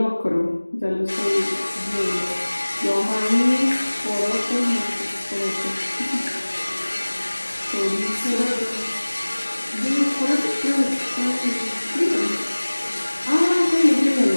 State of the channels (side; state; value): both; inverted; correlation -1.00